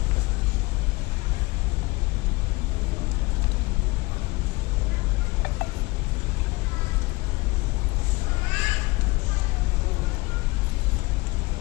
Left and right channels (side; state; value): right; quieter; 23.3 dB